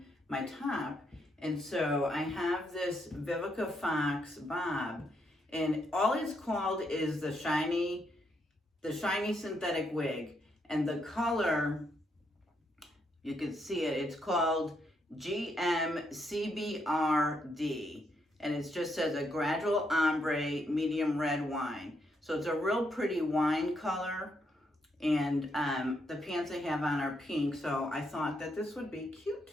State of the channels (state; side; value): normal; both; correlation 0.77